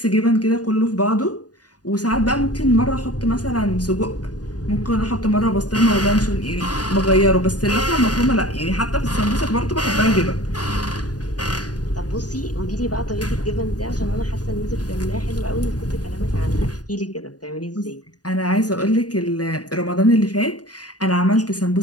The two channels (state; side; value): late; right; 0.68 ms